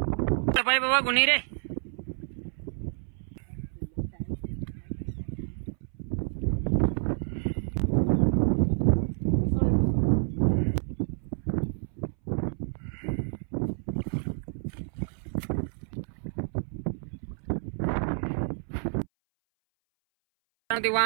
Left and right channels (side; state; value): left; silent; 59 dB below the other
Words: पाय बाबा कोणी रे ते